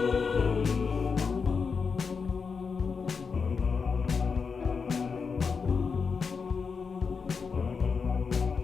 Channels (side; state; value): right; quieter; 5.4 dB